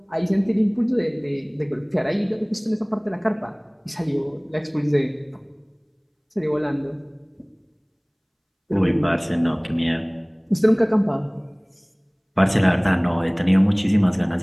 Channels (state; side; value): identical; both; correlation 1.00